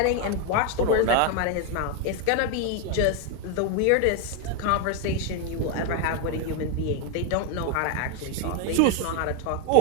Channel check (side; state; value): both; different; correlation 0.01